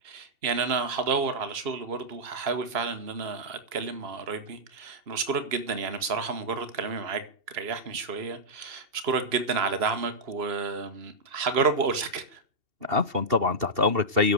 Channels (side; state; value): left; late; 3.0 ms